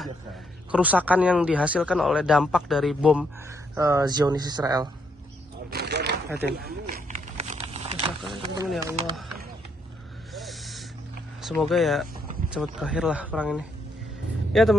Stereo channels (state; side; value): normal; both; correlation 0.74